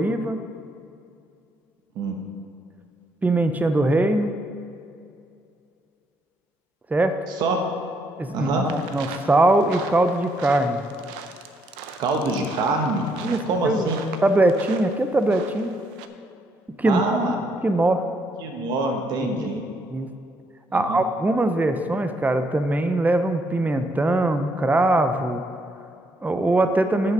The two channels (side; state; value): both; normal; correlation 0.74